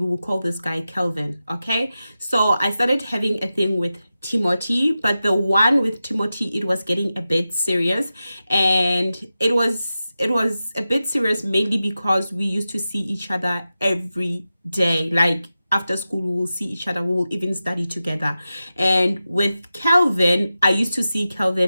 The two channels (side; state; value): both; inverted; correlation -0.93